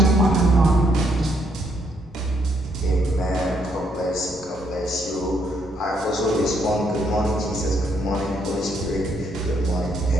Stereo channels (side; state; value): both; normal; correlation 0.72